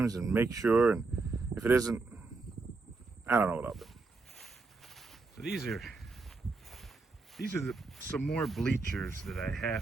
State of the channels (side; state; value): left; quieter; 3.8 dB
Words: and make sure, and if it isn't, I don't know what I'll do. So these are some more bleachers that I